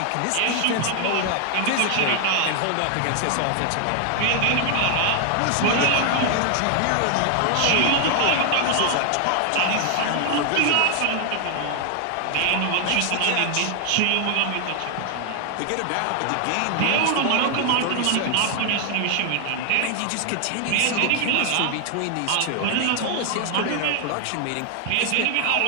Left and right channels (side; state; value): both; different; correlation 0.00